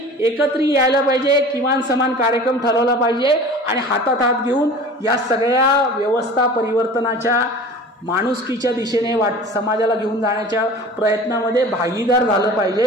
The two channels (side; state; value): both; normal; correlation 0.41